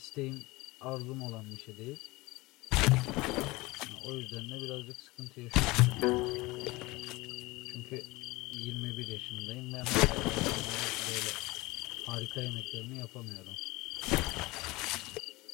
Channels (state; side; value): quieter; right; 21.9 dB